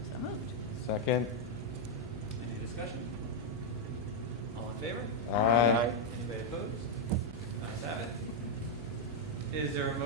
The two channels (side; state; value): both; normal; correlation -0.01